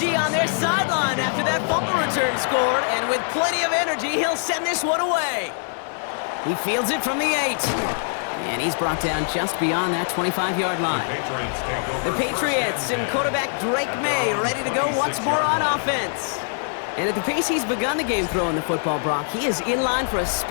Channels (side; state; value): right; silent; 56 dB below the other